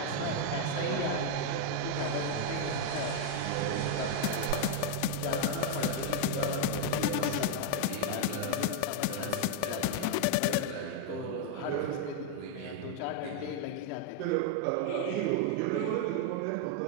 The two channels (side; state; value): both; different; correlation 0.00